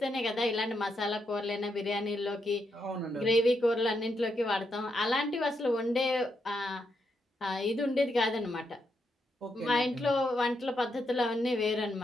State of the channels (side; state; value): both; normal; correlation 0.81